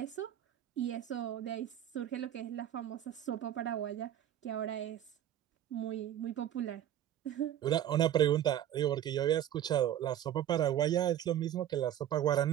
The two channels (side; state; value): left; quieter; 11.3 dB